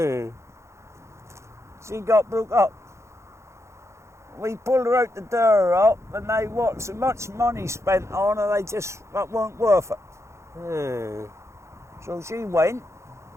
got broke up. We pulled her out the door up, and they what so much money spent on her, that weren't worth it. So she went.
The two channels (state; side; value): late; left; 0.14 ms